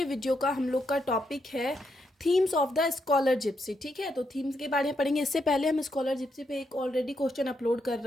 video का हम लोग का टॉपिक है themes of the scholar gipsy. ठीक है, तो थीम्स के बारे में पढ़ेंगे। इससे पहले हम स्कॉलर जिप्सी पे एक ऑलरेडी क्वेश्चन अपलोड कर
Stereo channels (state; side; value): normal; both; correlation 0.79